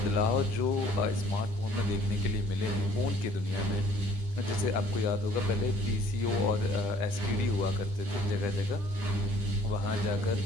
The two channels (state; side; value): late; left; 10 ms